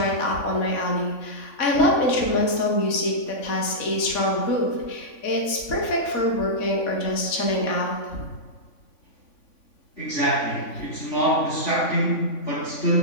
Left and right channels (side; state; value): right; late; 3.5 ms